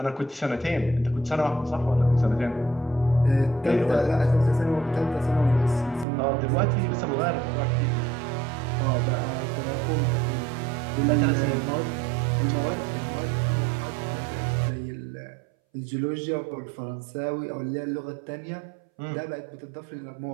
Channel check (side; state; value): left; drops out; at 6.1 s